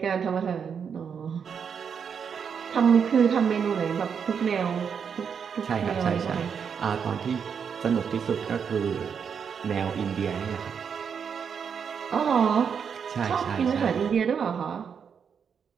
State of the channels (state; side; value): quieter; left; 6.9 dB